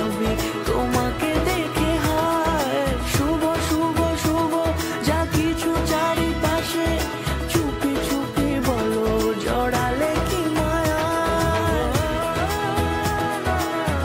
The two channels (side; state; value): both; identical; correlation 1.00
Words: তোমাকে দেখে হায়। শুভ শুভ শুভ যা কিছু চারিপাশে, চুপি চুপি বলো জড়ালে কি মায়া।